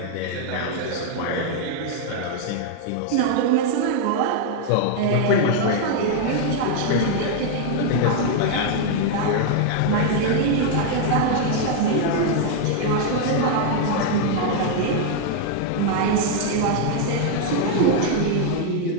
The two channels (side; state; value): both; different; correlation 0.00